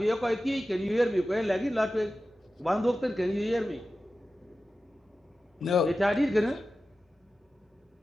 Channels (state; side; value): normal; both; correlation 0.94